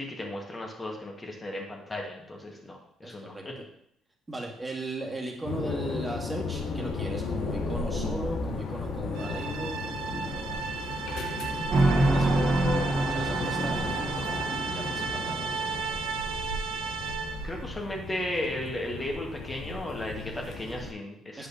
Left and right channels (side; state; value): both; normal; correlation 0.75